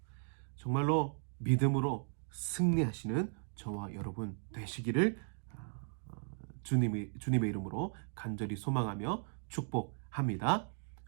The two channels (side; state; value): left; silent; digital silence